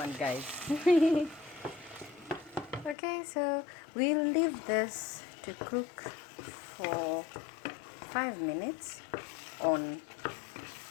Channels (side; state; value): right; drops out; at 3.0 s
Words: guys. Okay, so we'll leave this to cook for 5 minutes on.